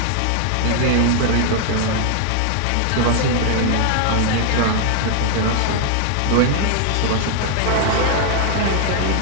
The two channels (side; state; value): both; different; correlation 0.00